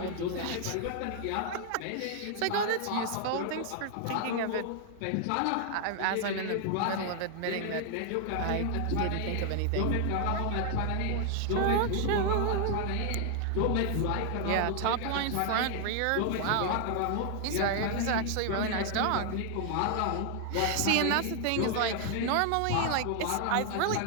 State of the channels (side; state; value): both; different; correlation 0.00